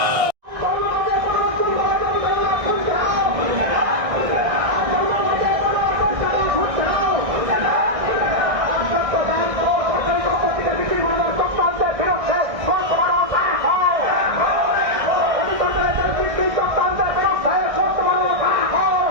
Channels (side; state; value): left; late; 1.6 ms